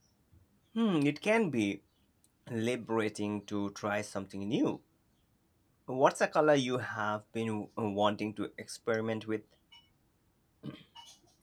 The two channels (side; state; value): both; identical; correlation 1.00